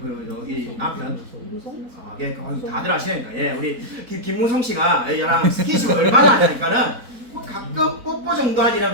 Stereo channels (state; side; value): late; left; 4.0 ms